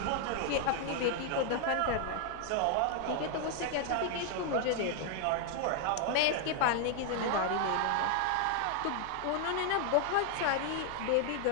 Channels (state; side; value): different; both; correlation 0.00